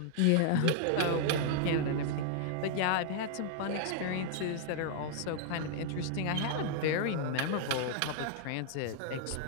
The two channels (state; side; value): different; both; correlation -0.01